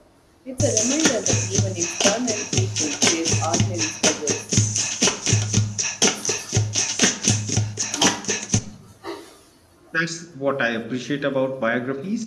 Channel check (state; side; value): identical; both; correlation 1.00